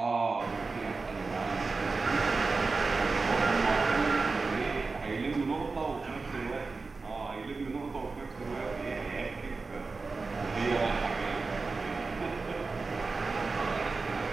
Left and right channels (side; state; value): left; quieter; 4.0 dB